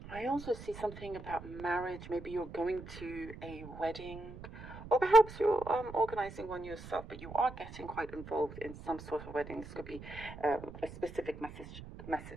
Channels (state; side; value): noise; right; rumble, 13 dB below the sound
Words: I also see something about marriage. Maybe you're going to a wedding, or perhaps you're organizing one yourself, but you are getting quite involved in some sort of wedding. This could be a specific